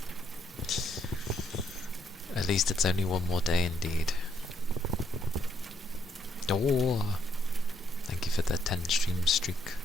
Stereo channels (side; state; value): both; normal; correlation 0.73